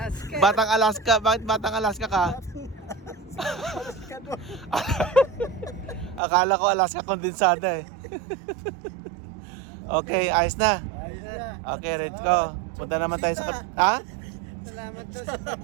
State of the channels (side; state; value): left; drops out; at 6.2 s